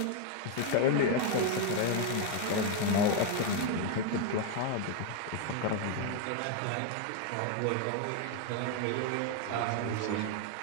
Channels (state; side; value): different; both; correlation 0.01